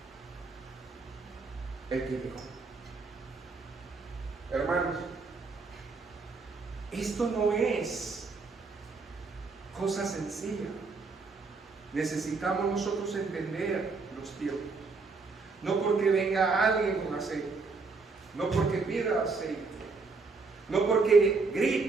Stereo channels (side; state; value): left; quieter; 4.2 dB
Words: El que dijo. Hermanos, esto no es cosa sencilla. Necesitamos nosotros entender los tiempos. No porque venga alguien con aceite, no porque pida aceite, no porque